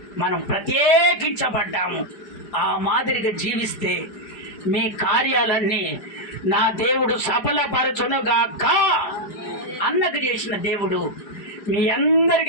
మనం ప్రత్యేకించబడ్డాము. ఆ మాదిరిగా జీవిస్తే మీ కార్యాలన్నీ నా దేవుడు సఫలపరచునుగాక. అన్నకు చేసిన దేవుడు మీ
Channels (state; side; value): late; right; 4.9 ms